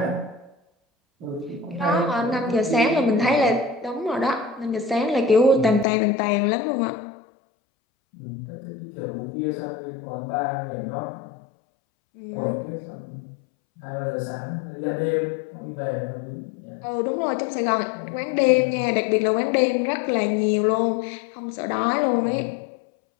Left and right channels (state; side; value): drops out; right; at 5.9 s